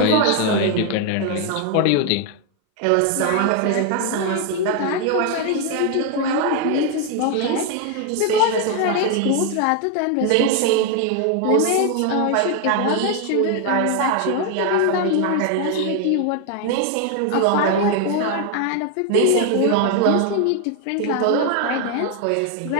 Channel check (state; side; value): different; both; correlation 0.01